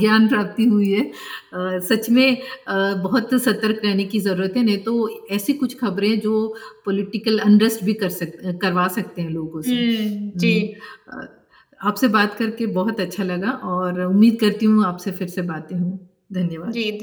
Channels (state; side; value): identical; both; correlation 1.00